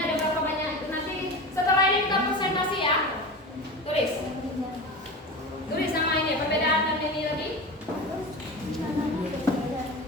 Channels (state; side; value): normal; both; correlation 0.29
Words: ada berapa banyak itu nanti setelah ini kita presentasi ya. Tulis. Tulis sama ini perbedaan dan ini lagi.